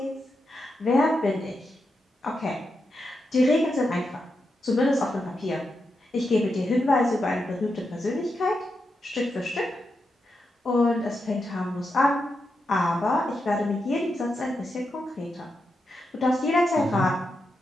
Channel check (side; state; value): both; normal; correlation 0.86